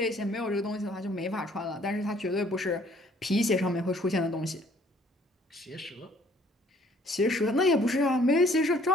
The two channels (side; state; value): both; normal; correlation 0.59